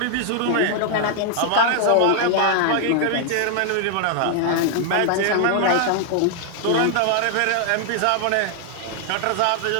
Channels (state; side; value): different; both; correlation 0.00